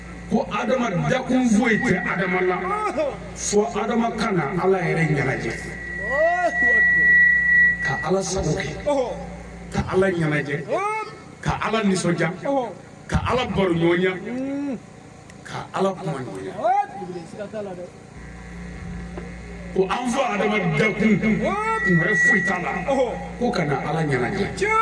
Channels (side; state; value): both; identical; correlation 1.00